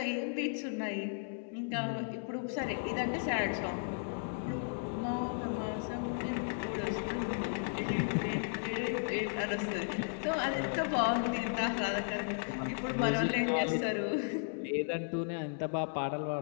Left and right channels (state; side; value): silent; right; digital silence